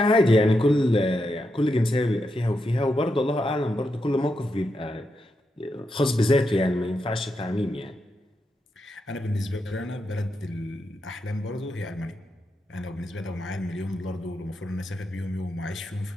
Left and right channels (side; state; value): both; normal; correlation 0.85